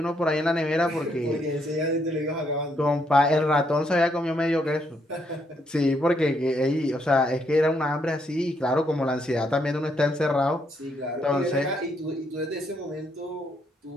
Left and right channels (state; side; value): normal; both; correlation 0.74